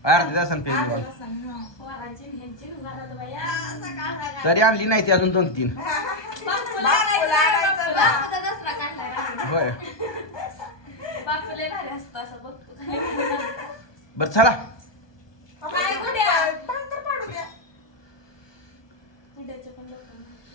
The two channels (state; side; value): late; right; 1.2 ms